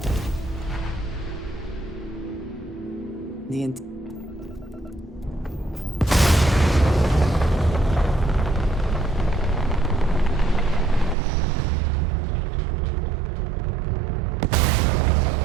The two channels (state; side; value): drops out; left; at 11.2 s